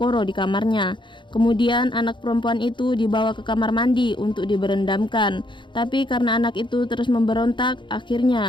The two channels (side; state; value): right; late; 0.23 ms